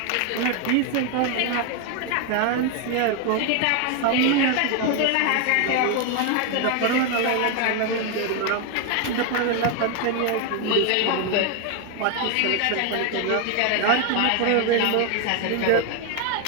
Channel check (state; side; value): different; both; correlation 0.01